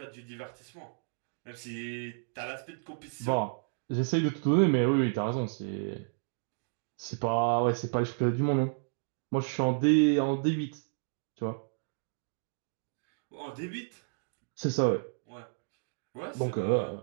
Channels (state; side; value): silent; left; digital silence